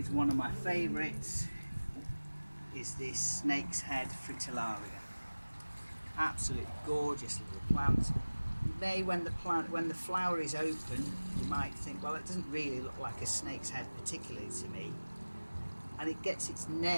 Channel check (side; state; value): both; inverted; correlation -1.00